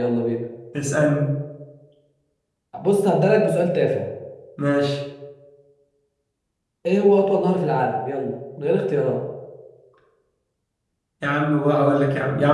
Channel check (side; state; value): both; identical; correlation 1.00